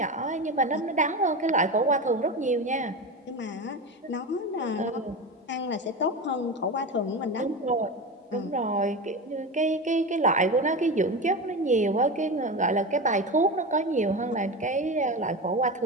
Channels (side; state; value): both; normal; correlation 0.23